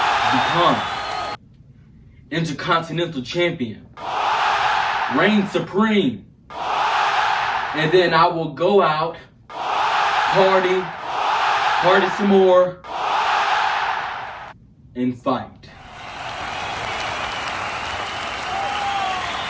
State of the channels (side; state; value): both; identical; correlation 1.00